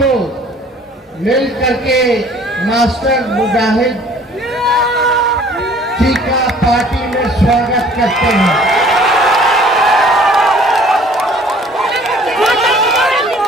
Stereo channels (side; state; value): both; normal; correlation 0.53